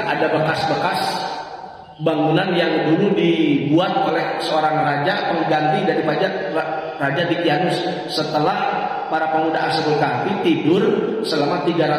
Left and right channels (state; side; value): identical; both; correlation 1.00